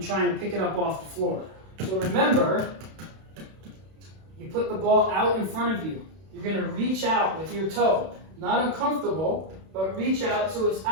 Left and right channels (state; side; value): late; left; 31 ms